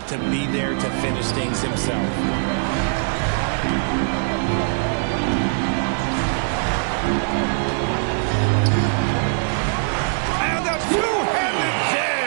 to be there to finish things himself. And a two-handed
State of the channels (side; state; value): left; silent; digital silence